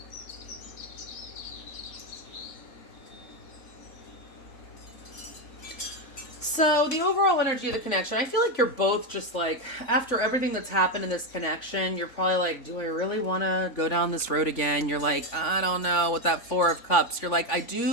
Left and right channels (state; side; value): late; right; 3.5 ms